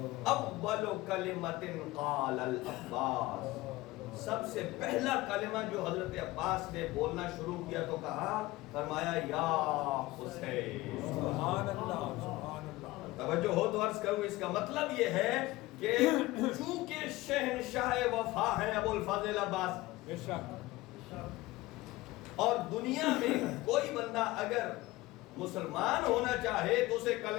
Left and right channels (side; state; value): right; quieter; 19.2 dB